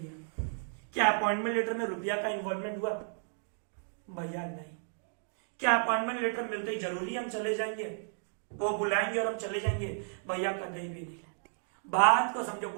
क्या अपॉइंटमेंट लेटर में रुपया का इन्वॉल्वमेंट हुआ, भैया नहीं। क्या अपॉइंटमेंट लेटर मिलते ही जरूरी हम चले जाएंगे, वो बुलाएंगे और हम चले जाएंगे, भैया कभी भी नहीं। बात को समझो,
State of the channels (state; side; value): silent; left; digital silence